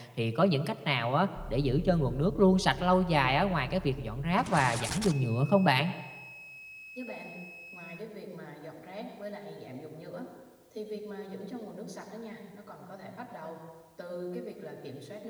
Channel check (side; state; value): both; identical; correlation 1.00